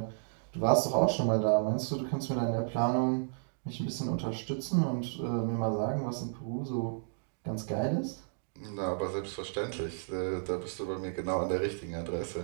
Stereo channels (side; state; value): left; silent; digital silence